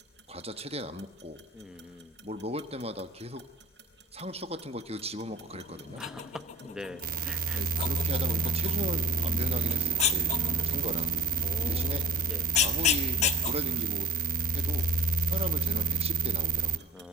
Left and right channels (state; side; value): normal; both; correlation 0.44